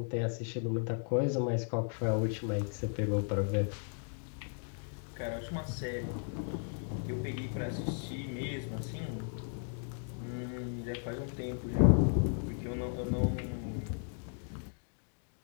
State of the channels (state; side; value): silent; right; 54 dB below the other